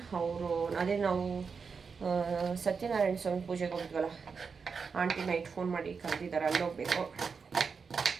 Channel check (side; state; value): left; quieter; 5.5 dB